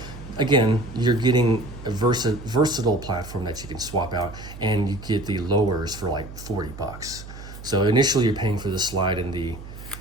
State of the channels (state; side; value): noise; right; hum, 14 dB below the sound